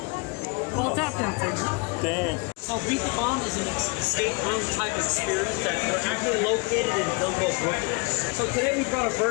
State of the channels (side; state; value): right; quieter; 30.0 dB